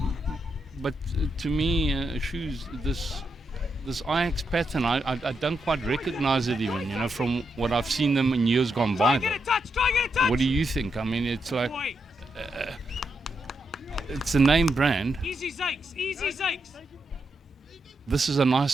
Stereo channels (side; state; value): both; normal; correlation 0.83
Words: But to me, Shoes, this Ajax pattern, I don't quite recognize it even, from what I've seen them in years gone by. What do you think? I mean, it's like, it's a name brand. Easy Zakes. This is a nice